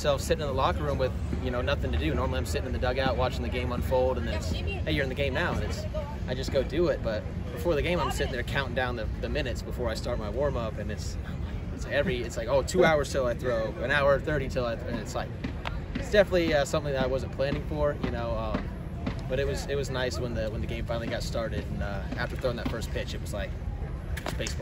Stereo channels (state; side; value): identical; both; correlation 1.00